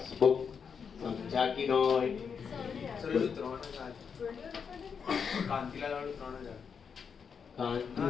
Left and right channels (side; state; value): right; quieter; 6.5 dB